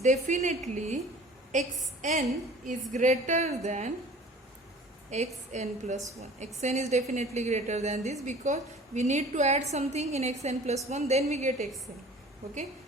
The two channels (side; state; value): both; normal; correlation 0.46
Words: xn is greater than xn plus 1. xn is definitely greater than this because we need to add something in xn plus 1, then we get xn. Okay,